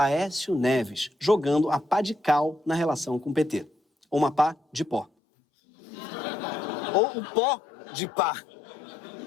Neves, jogando a pá de cal na relação com o PT. Ou uma pá de pó. Ou o pó de pá,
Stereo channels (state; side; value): drops out; right; at 5.1 s